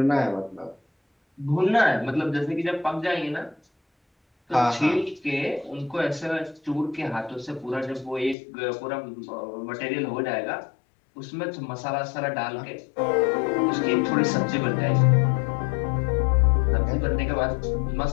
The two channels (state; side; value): drops out; right; at 8.3 s